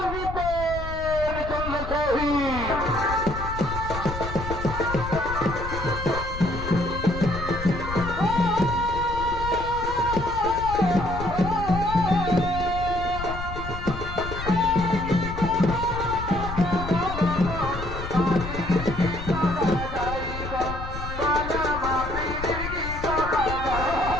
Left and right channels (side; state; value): left; noise; rumble, 7 dB below the sound